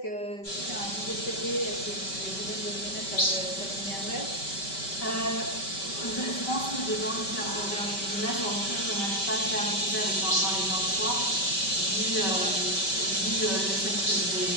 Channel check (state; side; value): late; right; 5.2 ms